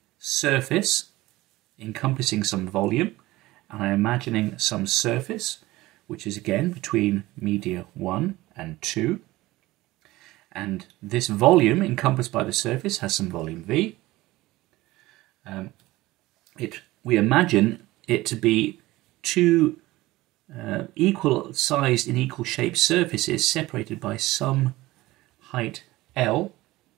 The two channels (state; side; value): quieter; left; 18.5 dB